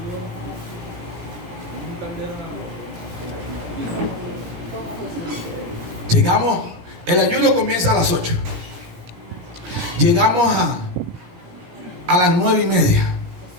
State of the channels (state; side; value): late; left; 17 ms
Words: Llegamos, el ayuno comienza a las 8. Llegamos a las 9:30.